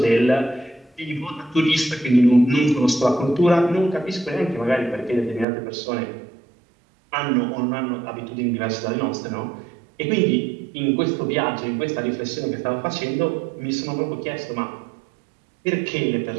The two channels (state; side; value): drops out; left; at 5.5 s